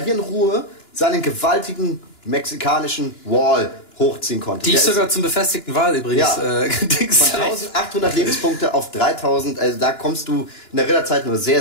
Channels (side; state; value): right; late; 2.9 ms